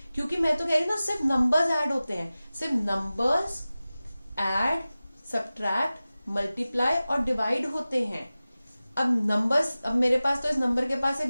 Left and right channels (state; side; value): inverted; both; correlation -0.96